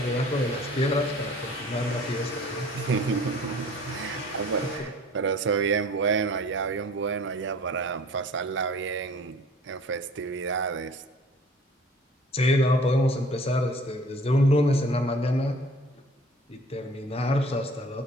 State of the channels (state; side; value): normal; both; correlation 0.48